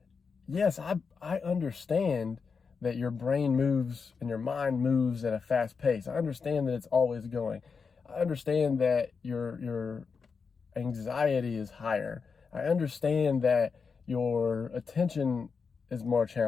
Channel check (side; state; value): right; quieter; 5.4 dB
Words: yes, I understand that your brain moves and your mind moves at a fast pace. I understand that it's always going. I understand that your anxiety is higher. I understand that your attention is more